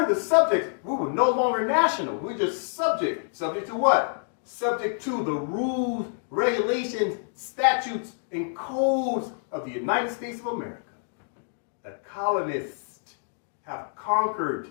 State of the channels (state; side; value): silent; right; digital silence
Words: the subjects. We were no longer national. We're just subject. Subject to what? Subject to the rules, regulations, statutes, and codes of the United States of America. The colonists have